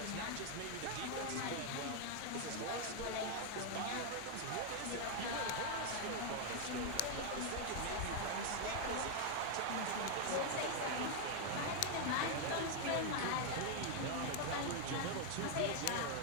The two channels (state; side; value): different; both; correlation 0.00